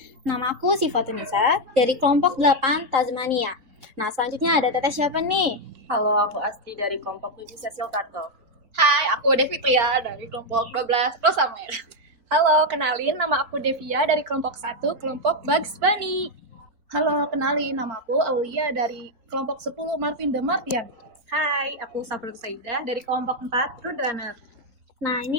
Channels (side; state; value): left; late; 4.1 ms